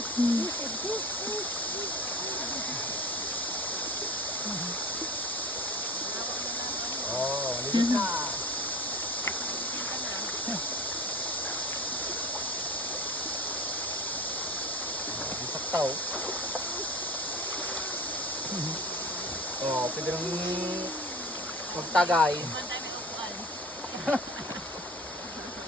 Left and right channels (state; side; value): normal; both; correlation 0.35